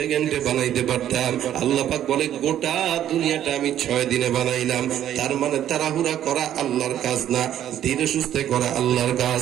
বানাইতে পারতাম। আল্লাহ পাক বলে গোটা দুনিয়াটা আমি 6 দিনে বানাইলাম। তার মানে তাড়াহুড়া করা আল্লাহর কাজ না, ধীরে সুস্থে করা আল্লাহর কাজ।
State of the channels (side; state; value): left; quieter; 11.1 dB